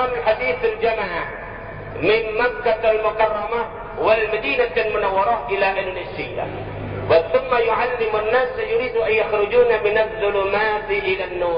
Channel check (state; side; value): identical; both; correlation 1.00